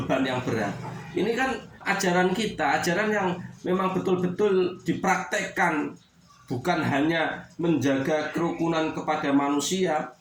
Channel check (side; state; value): both; identical; correlation 1.00